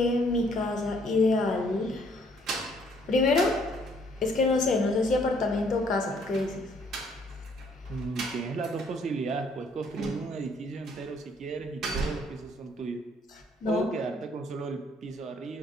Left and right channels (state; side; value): normal; both; correlation 0.64